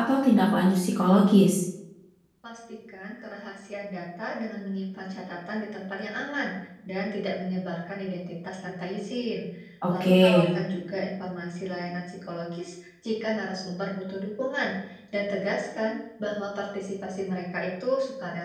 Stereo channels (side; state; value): both; identical; correlation 1.00